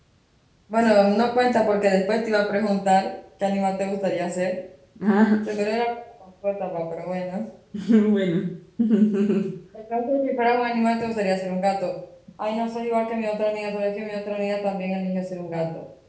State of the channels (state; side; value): identical; both; correlation 1.00